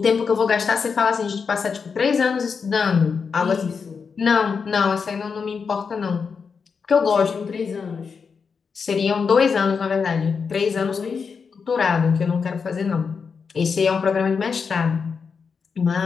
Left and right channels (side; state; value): right; quieter; 5.7 dB